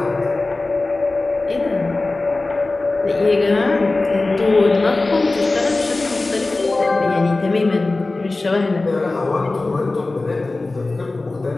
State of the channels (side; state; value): right; quieter; 3.2 dB